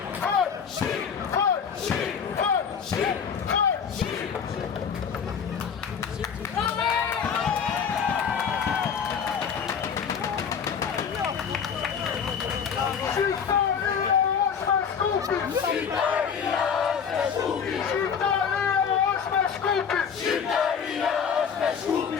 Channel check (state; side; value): quieter; right; 6.9 dB